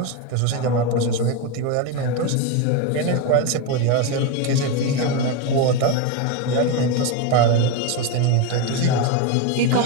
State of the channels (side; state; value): both; different; correlation 0.04